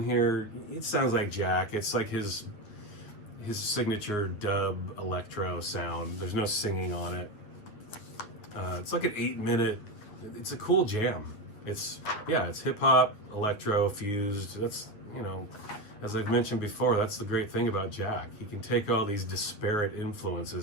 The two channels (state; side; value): late; right; 9.5 ms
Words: here, it sounds like Jack. It's like his signature dub electro sound. There's no singing on it. It's like an 8-minute. It's a cool jam. It's hip hop, electro fused. That's, as I've mentioned before, that's the great thing about Jack. He can take all these disparate